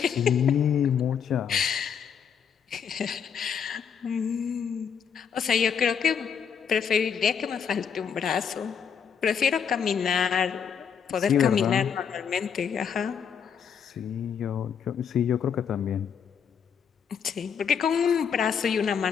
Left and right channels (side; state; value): right; quieter; 7.3 dB